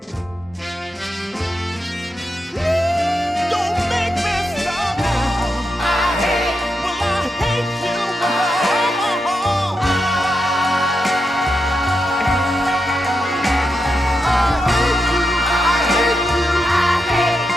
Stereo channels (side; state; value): both; normal; correlation 0.86